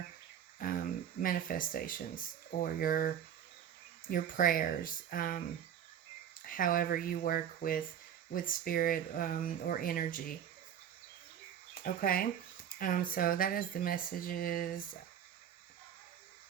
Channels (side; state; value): left; quieter; 9.3 dB